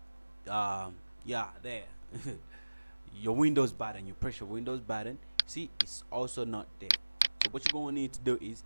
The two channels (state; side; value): inverted; both; correlation -1.00